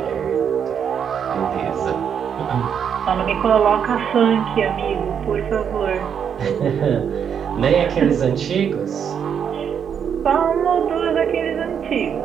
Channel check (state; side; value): quieter; left; 7.8 dB